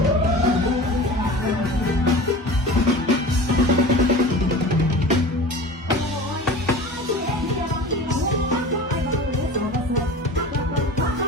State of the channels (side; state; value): both; normal; correlation 0.36